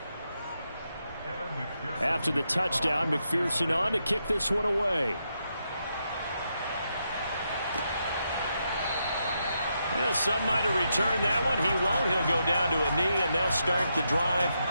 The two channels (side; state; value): both; inverted; correlation -0.82